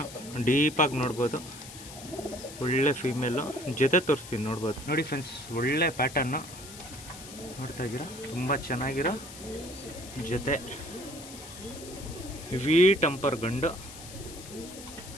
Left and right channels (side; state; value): left; noise; hiss, 14 dB below the sound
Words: ಡೀಪಾಗಿ ನೋಡ್ಬೋದು. ಒಳ್ಳೆ ಫೀಮೇಲು. ಜೊತೆ ತೋರಿಸ್ತೀನಿ ನೋಡ್ಬೋದು. ನೋಡಿ ಫ್ರೆಂಡ್ಸ್, ಒಳ್ಳೆ ಪ್ಯಾಟರ್ನು ನೋಡ್ತಾ ಇದ್ದೀರಾ, ತುಂಬ ಚೆನ್ನಾಗಿರೋ ಜೊತೆ. ವಿ ಟೆಂಪರ್ ಗಂಡು.